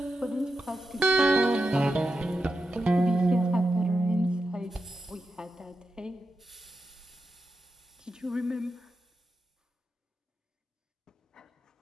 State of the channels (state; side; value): normal; both; correlation 0.89